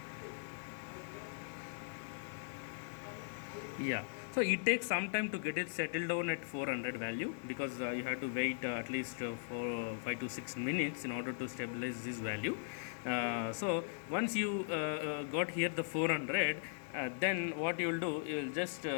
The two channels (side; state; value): right; silent; digital silence